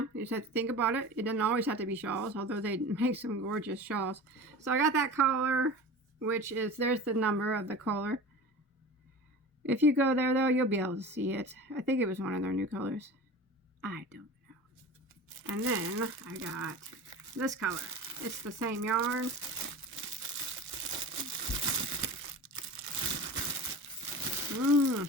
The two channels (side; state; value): both; normal; correlation 0.34